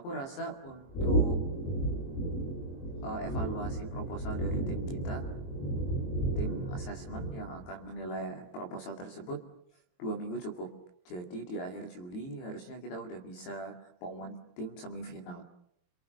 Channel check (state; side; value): late; right; 22 ms